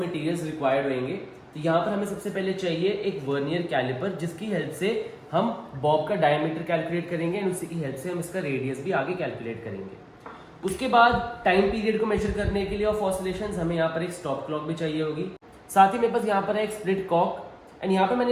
मटेरियल्स रिक्वायर्ड होंगे। तो यहाँ पर हमें सबसे पहले चाहिए एक वर्नियर कैलिपर जिसकी हेल्प से हम बॉब का डायमीटर कैलकुलेट करेंगे एंड उसी की हेल्प से हम इसका रेडियस भी आगे कैलकुलेट करेंगे। उसके बाद टाइम पीरियड को मेजर करने के लिए ऑफ ऑसिलेशंस हमें यहाँ पर एक स्टॉप क्लॉक भी चाहिए होगी। साथ ही मेरे पास यहाँ पर है एक स्प्लिट कॉक एंड यहाँ पर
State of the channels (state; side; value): identical; both; correlation 1.00